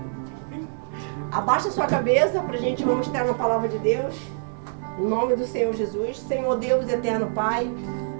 Abaixa sua cabeça para a gente vamos entrar na palavra de Deus. Em nome do Senhor Jesus. Senhor Deus, eterno Pai,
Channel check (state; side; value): silent; left; 62 dB below the other